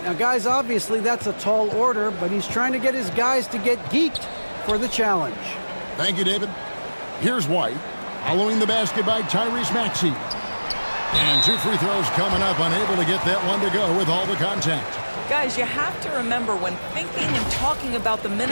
Now, guys, obviously that's a tall order, but he's trying to get his guys to get geeked for the challenge. Thank you, David. Here's White, following the basket by Tyrese Maxey. And 2 free throws coming up, unable to get that one to go with all the contact. Guys, you have to remember when thinking and talking about the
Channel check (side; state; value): both; inverted; correlation -1.00